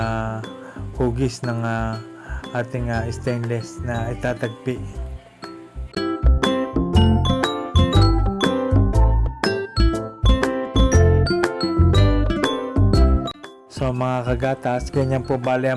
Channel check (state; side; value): identical; both; correlation 1.00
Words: hugis ng ating stainless na itatagpi. So mga kagatas, ganyan po bali